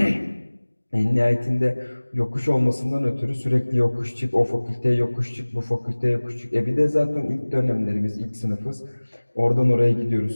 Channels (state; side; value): inverted; both; correlation -1.00